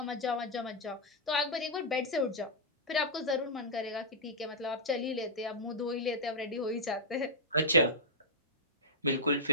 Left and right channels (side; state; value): both; normal; correlation -0.06